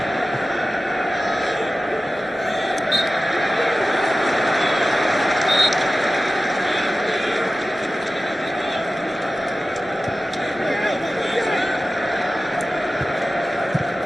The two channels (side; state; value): both; normal; correlation 0.95